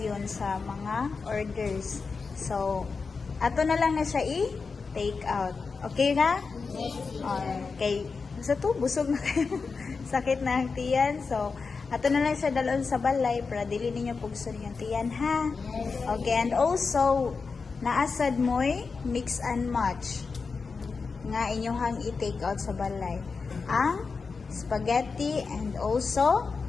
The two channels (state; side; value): quieter; right; 4.8 dB